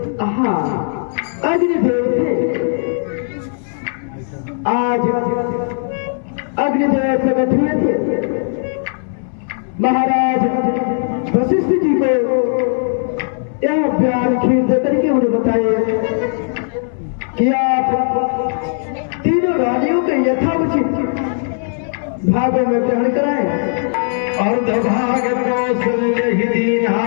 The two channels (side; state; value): right; silent; 63 dB below the other